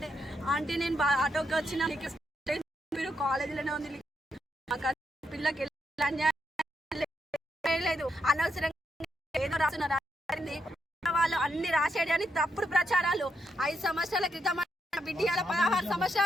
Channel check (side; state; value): both; normal; correlation 0.80